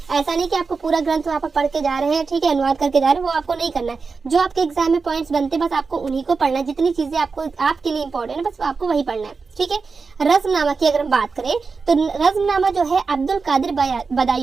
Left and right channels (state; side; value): quieter; left; 4.7 dB